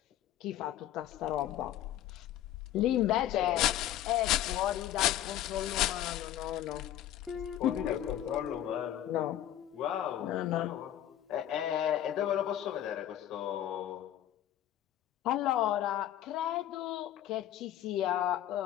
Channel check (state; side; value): quieter; right; 12.0 dB